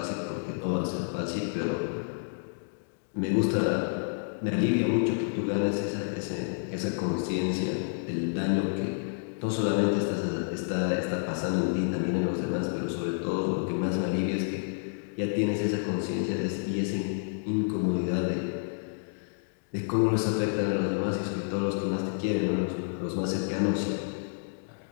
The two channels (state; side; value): silent; right; digital silence